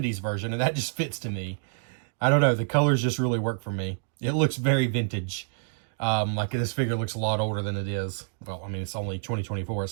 version, and that just fits to me. I don't know, the colors just really work for me. It looks very vintage. Like this figure looks a lot older than it is. Well, I mean, it's only 2024.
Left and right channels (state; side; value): silent; left; digital silence